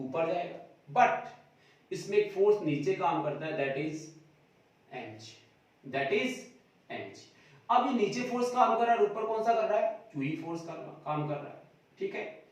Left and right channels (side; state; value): both; identical; correlation 1.00